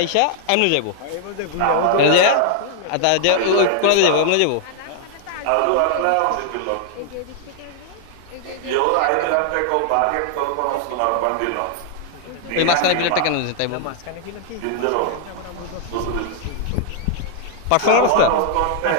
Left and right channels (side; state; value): both; different; correlation 0.00